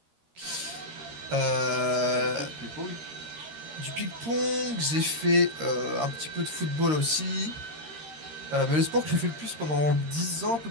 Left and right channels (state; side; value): late; left; 13 ms